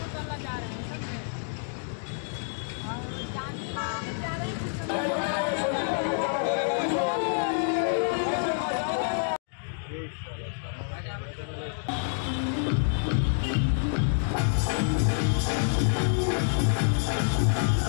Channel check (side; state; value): right; silent; digital silence